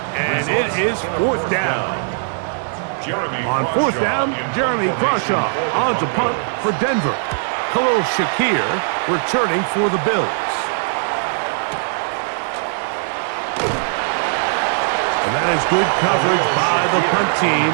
and it is 4th down. On 4th down, Jeremy Crawshaw on to punt for Denver. Khalil Shakir returning for the Bills. And that is good coverage by the punt team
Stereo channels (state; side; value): silent; left; 56 dB below the other